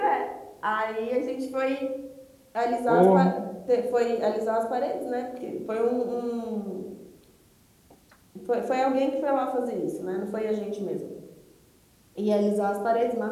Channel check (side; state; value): both; identical; correlation 1.00